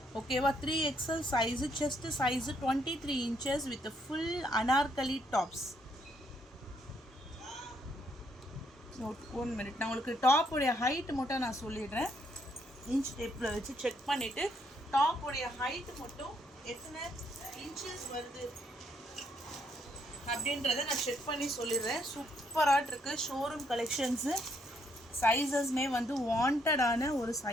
ஓகேவா? 3XL size. Chest size 23 inches with full Anarkali tops. 1 minute நான் உங்களுக்கு டாப்புடைய ஹைட் மட்டும் நான் சொல்லிடுறேன். இன்ச் டேப்பில் வச்சு செக் பண்ணிவிட்டு டாப்புடைய ஹைட் மட்டும் எத்தனை இன்ச்சஸ் வருது அப்படின்றத நான் செக் பண்ணி சொல்லிடுறேன். சூப்பராக இருக்குது. Showroom collections. சைஸஸ்மே வந்து வாண்டடான ஒரு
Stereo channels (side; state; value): both; normal; correlation 0.72